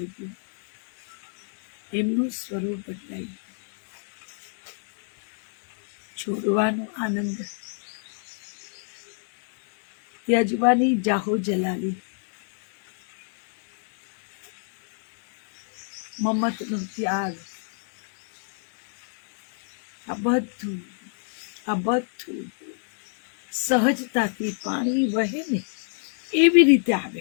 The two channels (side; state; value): right; silent; digital silence